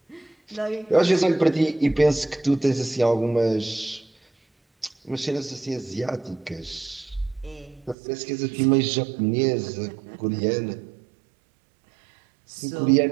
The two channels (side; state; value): left; drops out; at 8.0 s